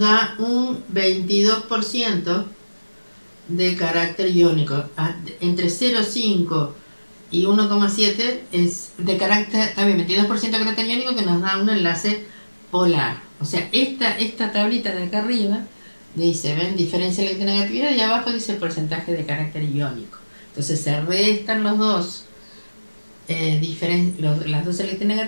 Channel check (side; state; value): both; inverted; correlation -1.00